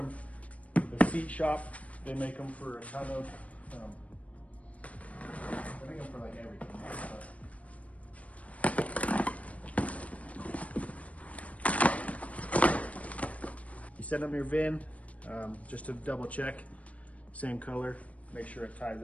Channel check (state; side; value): late; right; 0.067 ms